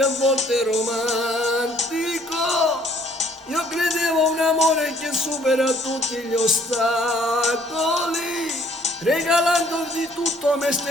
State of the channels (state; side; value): normal; both; correlation 0.61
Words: a volte romantico. Io credevo a un amore che supera tutti gli ostacoli, regalando di tutto a me